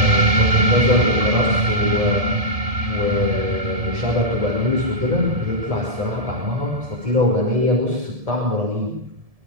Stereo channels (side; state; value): left; late; 1.7 ms